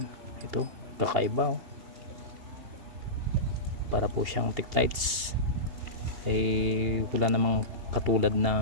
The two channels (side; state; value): left; late; 2.8 ms